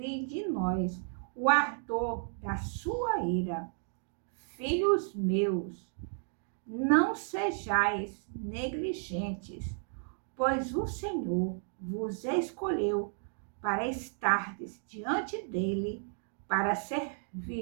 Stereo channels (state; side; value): silent; left; 56 dB below the other